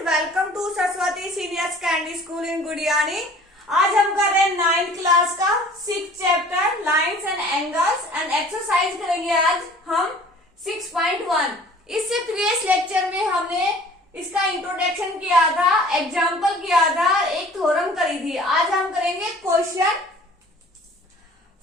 welcome to Saraswati senior secondary school in Gudiyani. आज हम कर रहे हैं 9th क्लास का 6th chapter lines and angles and exercise करेंगे आज हम 6.1। इससे प्रीवियस लेक्चर में हमने इसका इंट्रोडक्शन किया था, एग्जाम्पल किया था, एक थ्योरम करी थी। आज हम करेंगे question.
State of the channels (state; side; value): normal; both; correlation 0.49